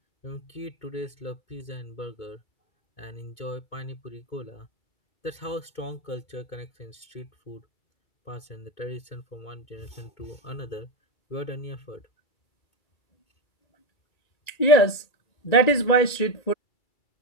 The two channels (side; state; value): right; late; 1.9 ms